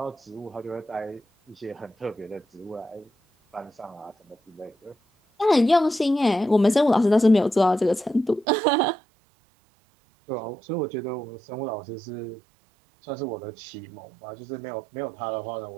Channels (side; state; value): left; drops out; at 8.5 s